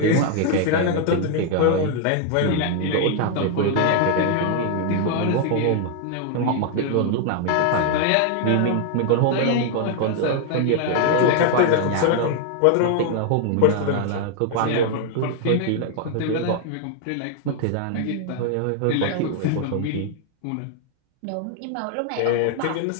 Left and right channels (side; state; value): both; different; correlation 0.00